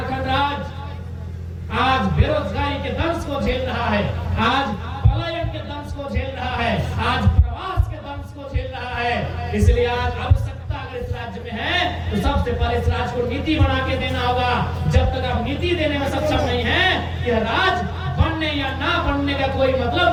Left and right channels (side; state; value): both; identical; correlation 1.00